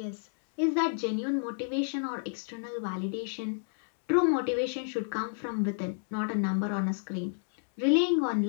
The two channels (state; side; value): silent; right; 58 dB below the other